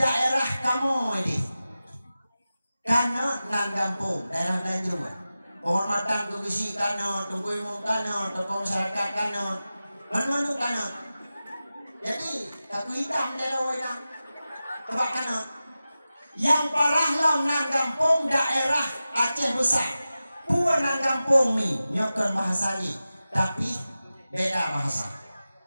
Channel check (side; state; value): both; inverted; correlation -0.94